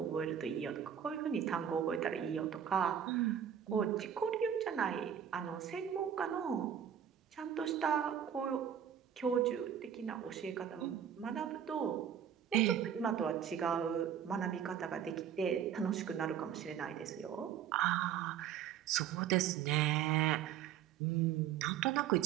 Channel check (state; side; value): quieter; left; 9.1 dB